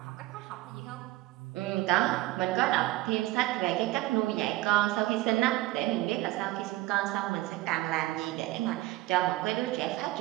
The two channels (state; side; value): quieter; left; 18.3 dB